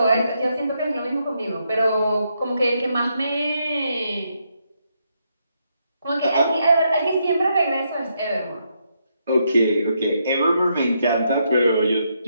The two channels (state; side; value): inverted; both; correlation -0.79